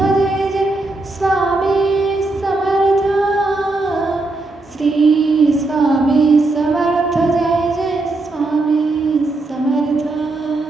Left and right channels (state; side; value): quieter; left; 3.1 dB